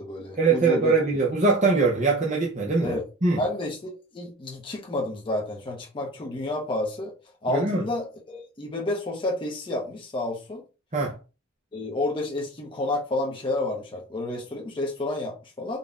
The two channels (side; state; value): both; normal; correlation 0.36